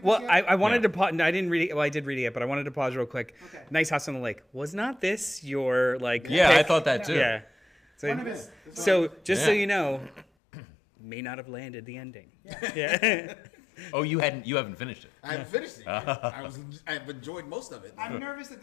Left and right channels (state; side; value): drops out; right; at 10.2 s